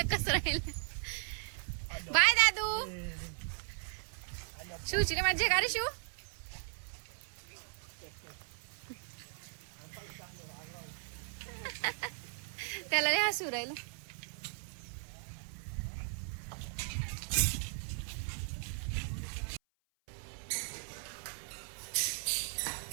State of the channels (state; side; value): silent; left; 53 dB below the other